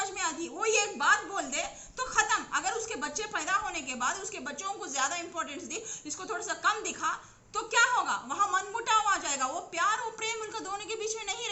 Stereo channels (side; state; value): both; identical; correlation 1.00